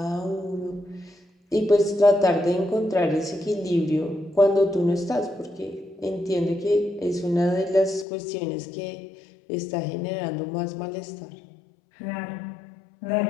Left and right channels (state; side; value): drops out; right; at 8.1 s